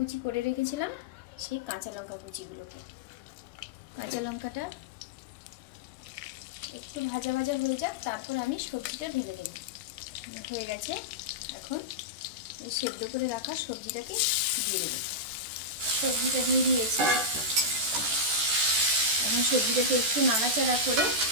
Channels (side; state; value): left; late; 14 ms